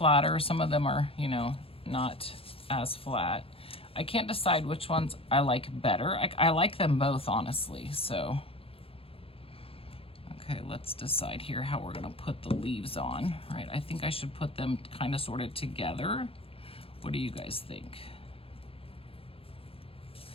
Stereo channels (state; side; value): late; right; 0.27 ms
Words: some of them are, you know, not as flat. I can't decide which ones I like better. I like them both, honestly, so. Okay, let's decide here how we're gonna put the leaves on, right? I think I should put them kind of sorted together. What do you guys think?